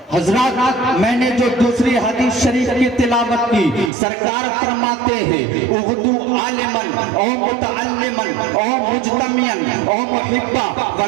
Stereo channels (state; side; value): drops out; left; at 3.9 s